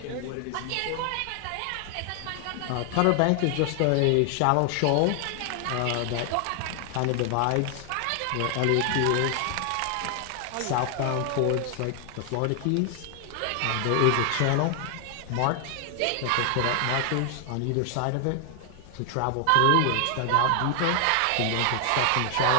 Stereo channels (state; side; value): different; both; correlation 0.00